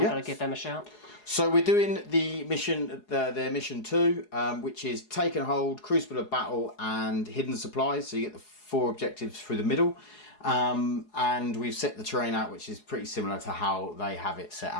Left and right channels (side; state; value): right; late; 4.8 ms